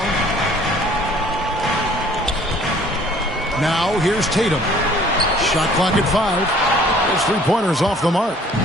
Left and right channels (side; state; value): both; normal; correlation 0.55